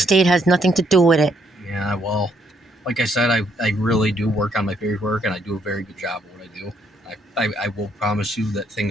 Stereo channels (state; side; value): normal; both; correlation 0.71